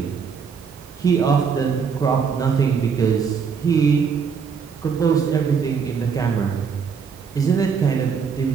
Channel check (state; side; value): quieter; left; 6.2 dB